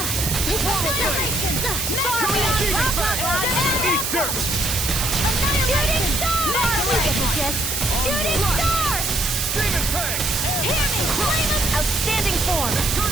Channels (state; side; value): noise; right; hiss, 1 dB below the sound